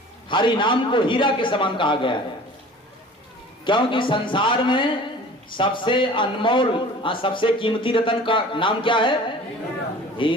हरि नाम को हीरा के समान कहा गया है। क्योंकि संसार में सबसे अनमोल सबसे कीमती रतन का नाम क्या है?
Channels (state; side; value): normal; both; correlation 0.44